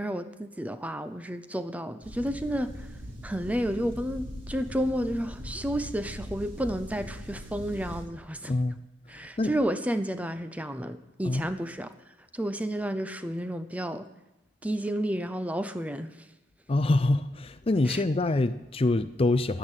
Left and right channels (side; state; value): both; normal; correlation 0.85